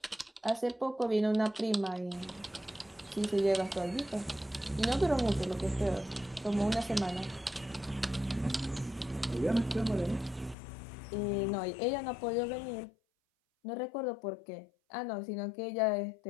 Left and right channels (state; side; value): drops out; right; at 10.6 s